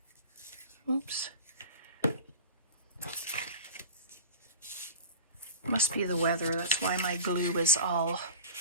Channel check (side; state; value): both; inverted; correlation -0.32